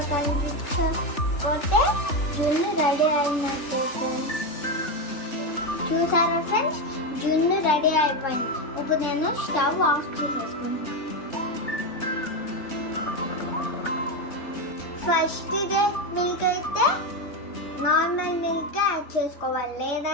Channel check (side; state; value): right; late; 3.4 ms